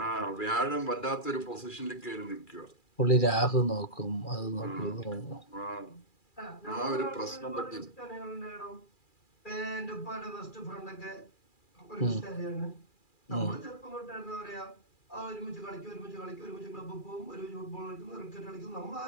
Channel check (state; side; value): late; right; 2.4 ms